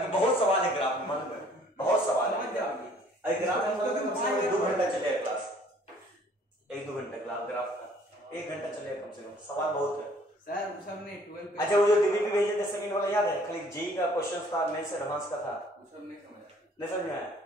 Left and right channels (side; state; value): both; normal; correlation 0.57